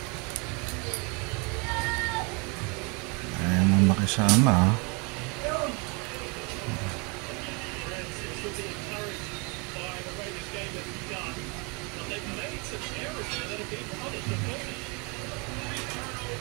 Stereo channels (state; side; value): quieter; left; 31.0 dB